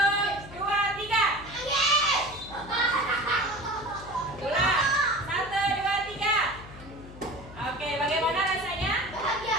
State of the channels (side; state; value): left; noise; hum, 16 dB below the sound